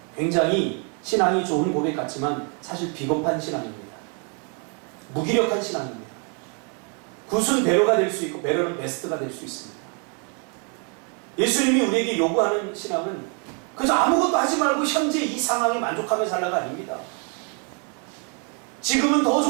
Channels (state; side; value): quieter; left; 38.1 dB